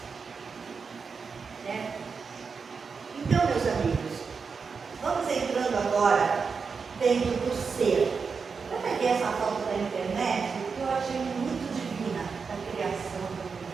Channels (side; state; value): left; quieter; 5.3 dB